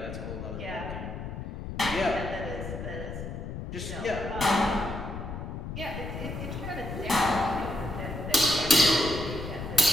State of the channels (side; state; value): left; noise; rumble, 7 dB below the sound